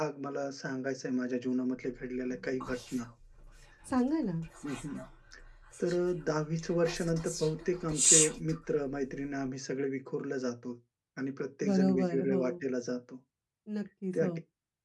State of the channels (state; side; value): identical; both; correlation 1.00